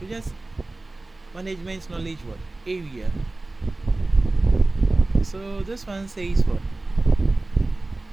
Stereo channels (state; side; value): quieter; left; 3.0 dB